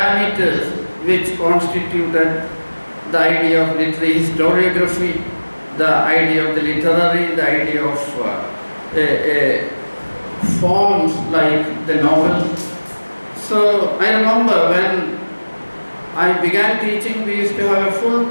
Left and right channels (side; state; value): both; inverted; correlation -1.00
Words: which constituted the idea of literary historiography, the idea of the literary, the idea of forms like the novel. So I remember when I began teaching, we used to have a full